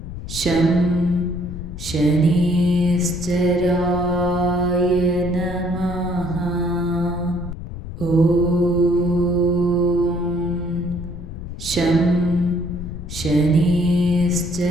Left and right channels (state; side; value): noise; left; rumble, 9 dB below the sound